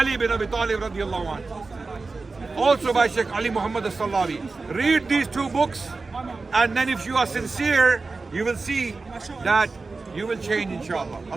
bin Abi Talib radiallahu anhu, also by Sheikh Ali Muhammad As-Sallabi. Read these two books, and then if you are sincere, you will see that you will change, inshallah.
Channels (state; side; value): quieter; left; 3.9 dB